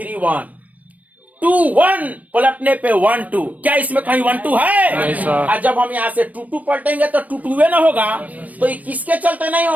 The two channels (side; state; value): left; late; 0.072 ms